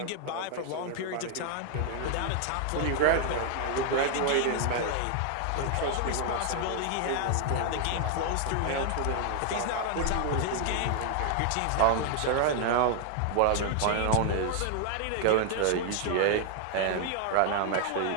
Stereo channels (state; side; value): different; both; correlation 0.00